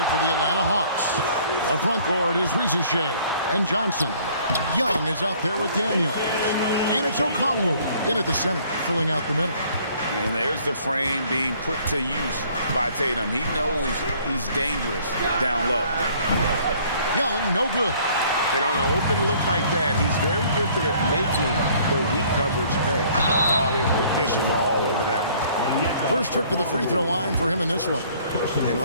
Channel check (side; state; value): both; inverted; correlation -0.57